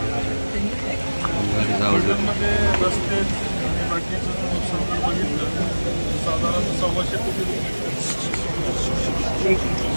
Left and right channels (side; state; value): both; inverted; correlation -1.00